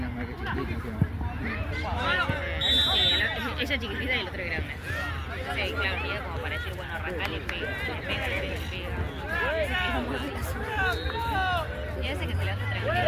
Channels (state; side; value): identical; both; correlation 1.00